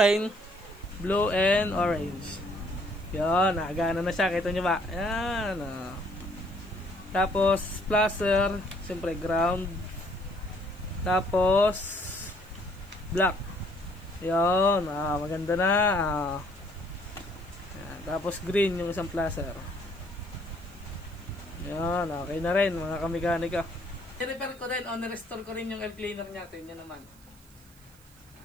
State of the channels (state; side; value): noise; right; hiss, 27 dB below the sound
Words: Blue and orange. Yan, nagana na siya. Kita nyo ba? Yan o. Tapos, placer. Siyempre, ground. Tapos, black. Yan. Maganda na. Yan. Tapos, green yung isang placer. Yan. Okay na rin mga kamekaniko. I-repair ko rin o nirestore ko rin yung air cleaner natin. Yan naman.